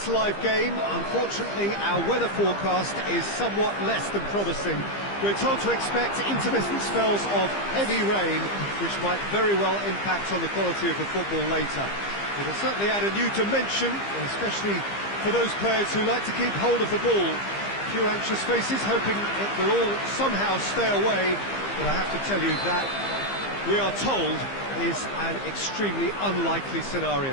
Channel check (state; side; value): late; right; 15 ms